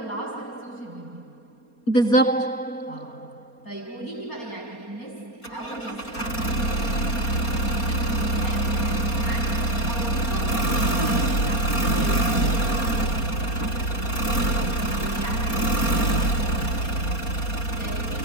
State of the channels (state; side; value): late; right; 4.3 ms